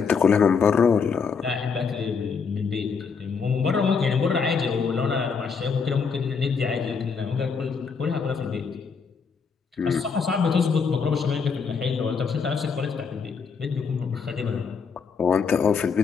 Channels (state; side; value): quieter; right; 5.6 dB